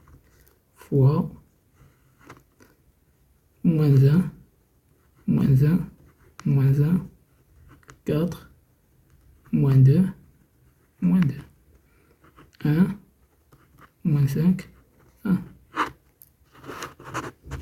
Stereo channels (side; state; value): both; identical; correlation 1.00